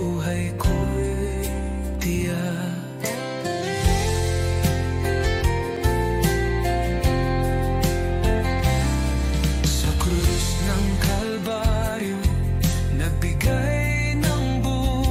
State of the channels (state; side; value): identical; both; correlation 1.00